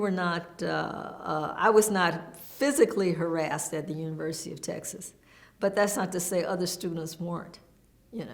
was not physically harassed at the University of Texas. But that's not to say other students weren't,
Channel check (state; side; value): identical; both; correlation 1.00